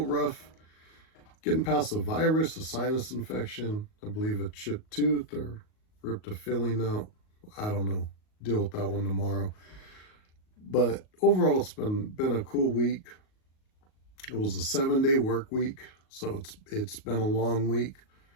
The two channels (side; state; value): right; late; 38 ms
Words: rough. Getting past the virus, a sinus infection, I believe a chipped tooth or ripped a filling out. I don't know. Deal with that one tomorrow. But overall, it's been a cool week. It was a 7-day work week, so it's been a long week.